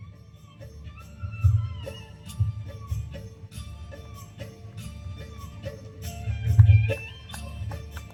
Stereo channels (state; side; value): identical; both; correlation 1.00